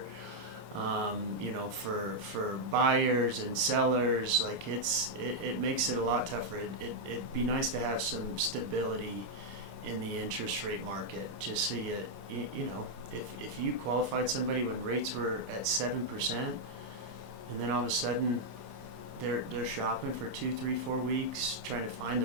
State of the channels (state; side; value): late; left; 24 ms